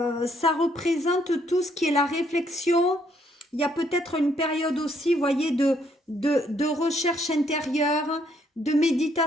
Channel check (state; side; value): normal; both; correlation 0.70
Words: représente tout ce qui est la réflexion. Il y a peut-être une période aussi, vous voyez, de recherche intérieure, de